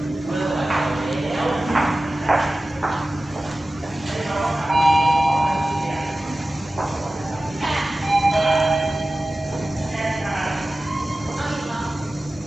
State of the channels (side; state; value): both; normal; correlation 0.96